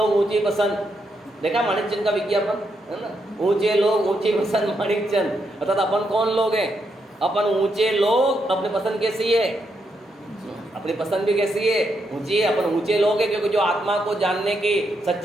ऊंची पसंद, देखा माणिकचंद का विज्ञापन है ना, ऊंचे लोग ऊंची पसंद माणिकचंद। अर्थात अपन कौन लोग हैं? अपन ऊंचे लोग। अपनी पसंद कैसी है? अपनी पसंद भी कैसी है? ऊंची है। अपन ऊंचे लोग हैं क्योंकि जो आत्मा को जानने की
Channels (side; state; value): both; normal; correlation 0.80